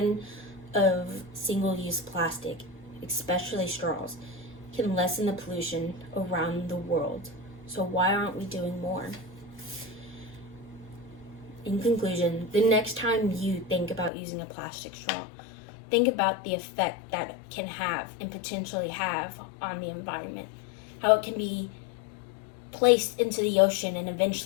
of single-use plastic, especially straws, can lessen the pollution around the world. So why aren't we doing more? In conclusion, the next time you think about using a plastic straw, think about the effect that it can have and potentially have on the environment. How it can be placed into the ocean and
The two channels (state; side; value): drops out; right; at 14.1 s